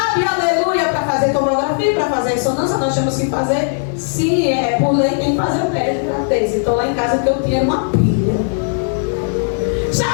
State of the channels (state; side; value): silent; right; digital silence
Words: aleluia, para fazer tomografia, para fazer ressonância, nós temos que fazer, se é por lei, tem que fazer o teste de gravidez. Então lá em casa que eu tinha uma pilha. Só